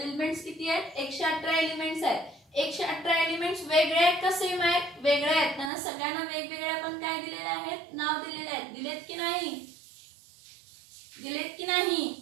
एलिमेंट्स किती आहेत 118 एलिमेंट्स आहेत. 118 एलिमेंट्स वेगळे आहेत का सेम आहेत. वेगळे आहेत. त्यांना सगळ्यांना वेगवेगळे आपण काय दिलेले आहेत, नाव दिलेले आहेत. दिलेत की नाही. दिलेत की नाही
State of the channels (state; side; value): drops out; left; at 5.7 s